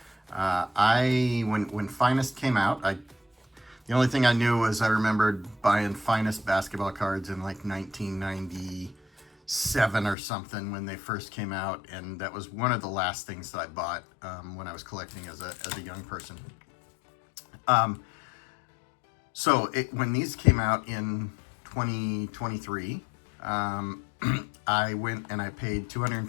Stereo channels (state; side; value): drops out; right; at 10.2 s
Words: when Finest came out, the only thing I knew was I remembered buying Finest basketball cards in like 1997 or something when they first came out, and that was one of the last things that I bought when I was collecting as a young person. When these came out in 2023, I went and I paid